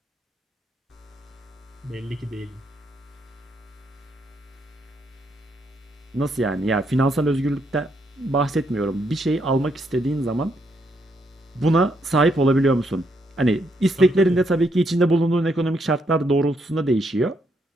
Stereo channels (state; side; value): normal; both; correlation 0.76